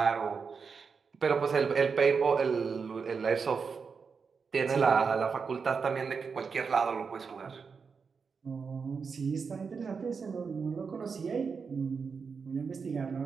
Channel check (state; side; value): quieter; left; 5.5 dB